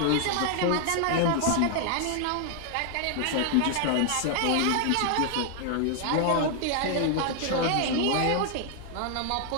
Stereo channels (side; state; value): both; different; correlation 0.00